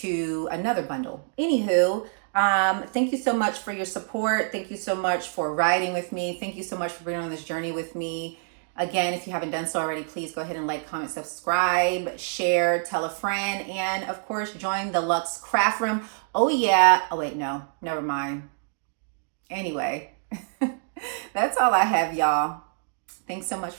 to another bundle. Anywho, thank you so much for your support. Thank you so much for riding with me. Thank you so much for being on this journey with me. Again, if you haven't done so already, please go ahead and like, comment, subscribe, share, tell a friend, and of course, join the Luxe Craft Room. Oh yeah. Oh wait, no, never mind. Anyway, that's all I have, y'all. Thanks so much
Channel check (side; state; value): left; silent; digital silence